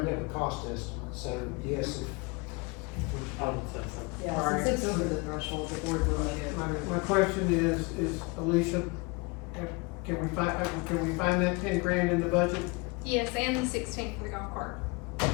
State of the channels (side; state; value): right; quieter; 28.2 dB